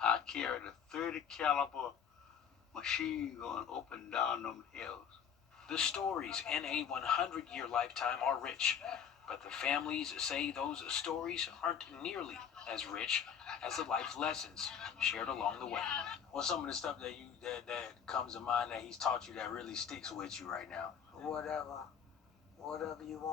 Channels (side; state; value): right; quieter; 7.8 dB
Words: I carried a 30 caliber machine gun up and down them hills. The stories in a 100-year lifetime are rich, but the families say those stories aren't nearly as rich as the life lessons shared along the way. What's some of the stuff that comes to mind that he's taught you that really sticks with you right now? Whatever you